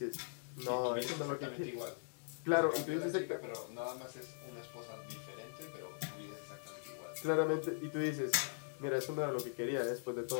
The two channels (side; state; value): right; silent; digital silence